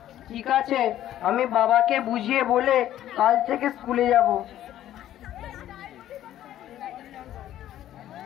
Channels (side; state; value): right; quieter; 12.4 dB